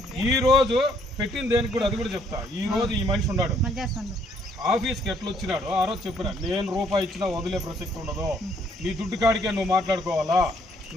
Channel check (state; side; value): normal; both; correlation 0.66